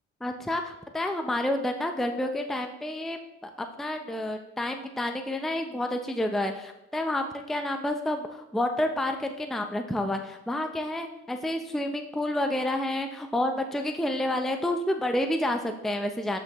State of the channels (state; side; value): normal; both; correlation 0.77